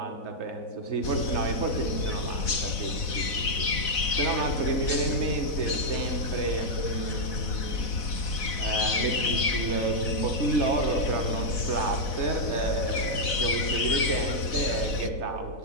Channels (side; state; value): right; late; 4.0 ms